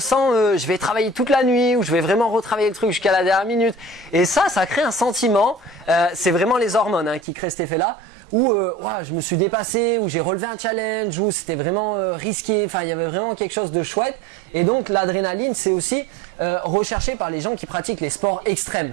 je vais travailler toute la nuit ou je vais vraiment retravailler le truc jusqu'à la dernière minute. Et ça crée un sentiment, c'est vraiment les hormones qui créent cet effet-là, où je me suis dépassé, où j'ai relevé un challenge, où c'était vraiment risqué, enfin il y avait vraiment quelque chose de chouette. Et donc l'adrénaline c'est aussi recherché par les gens qui pratiquent les sports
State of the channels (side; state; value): left; drops out; at 7.2 s